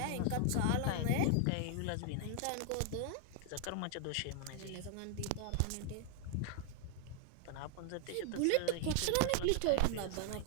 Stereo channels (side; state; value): both; different; correlation 0.00